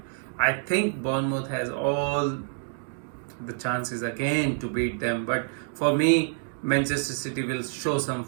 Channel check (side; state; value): left; silent; 59 dB below the other